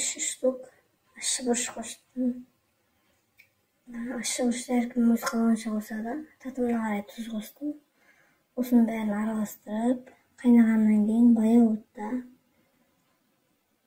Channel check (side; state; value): both; identical; correlation 1.00